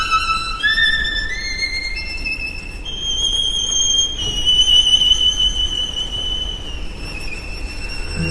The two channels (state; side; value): identical; both; correlation 1.00